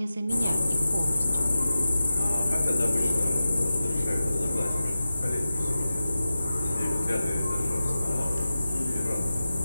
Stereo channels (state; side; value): inverted; both; correlation -0.94